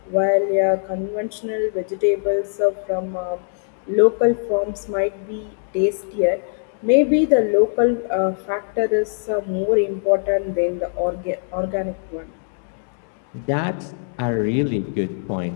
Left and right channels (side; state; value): right; silent; digital silence